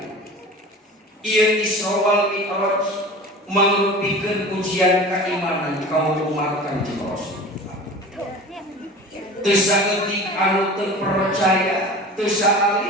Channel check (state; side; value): normal; both; correlation 0.37